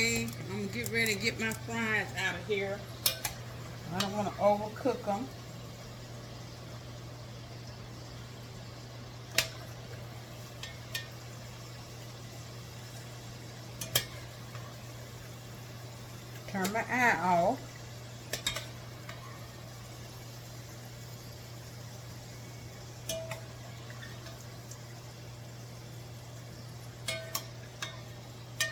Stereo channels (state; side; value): identical; both; correlation 1.00